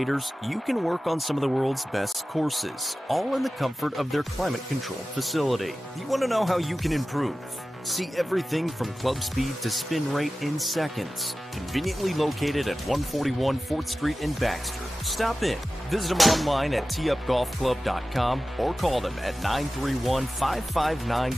you can work on some of the world's best courses, all in the comfort of their climate-controlled facility. You want to know how you can improve? See everything from club speed to spin rate in seconds. Conveniently located at 141 4th Street in Baxter. Stop in. Visit them online at teeupgolfclub.com or call them at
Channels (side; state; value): both; normal; correlation 0.95